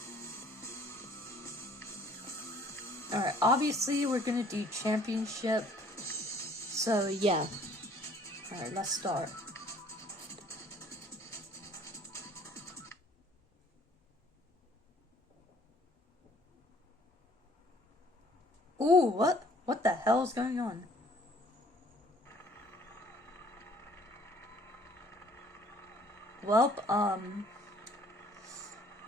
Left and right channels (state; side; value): normal; both; correlation 0.57